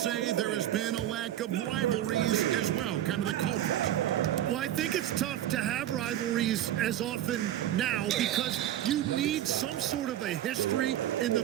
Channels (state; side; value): quieter; left; 12.3 dB